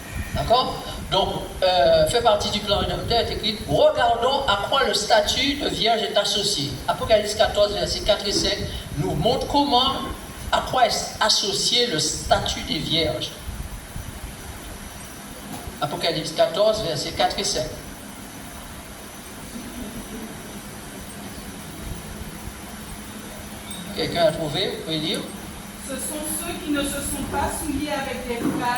D'accord? Donc, fait partie du plan rédempteur, est écrit, regardons à quoi le statut de vierge est associé. Apocalypse 14, versets 4 et 5, nous montre à quoi est associé le statut des vierges. Apocalypse 14, versets 4 et 5. Quelqu'un a trouvé? Vous pouvez lire? Ce sont ceux qui ne se sont pas souillés avec des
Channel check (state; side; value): identical; both; correlation 1.00